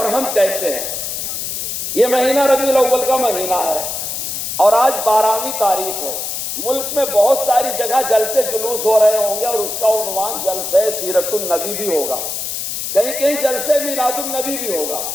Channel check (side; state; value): left; noise; hiss, 4 dB below the sound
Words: ہم کیسے ہیں؟ یہ مہینہ ربیع الاول کا مہینہ ہے اور آج 12ویں تاریخ ہے. ملک میں بہت ساری جگہ جلسے جلوس ہو رہے ہوں گے اور اس کا عنوان جلسہ سیرت النبی بھی ہوگا. کہیں کہیں جلسے میلاد النبی بھی ہوگا.